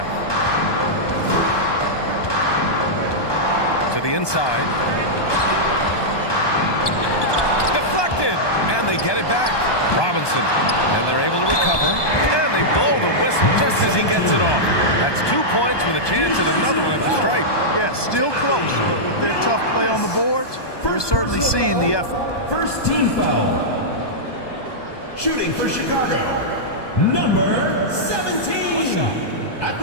To the inside. Deflected. And they get it back. Robinson. And they're able to recover. And they blow the whistle just as he gets it off. That's 2 points with a chance at another one at the stripe. Yeah, still close, but with their tough play on the boards, we're certainly seeing the effort. First team foul. Shooting for Chicago, number 17. At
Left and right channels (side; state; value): right; late; 1.2 ms